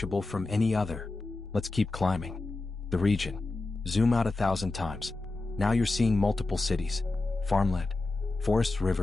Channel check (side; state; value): right; quieter; 3.2 dB